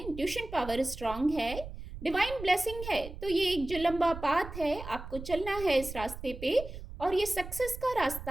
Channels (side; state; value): right; noise; rumble, 11 dB below the sound